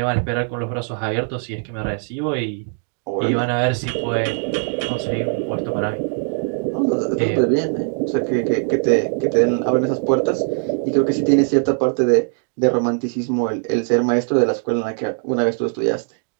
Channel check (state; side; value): silent; left; 57 dB below the other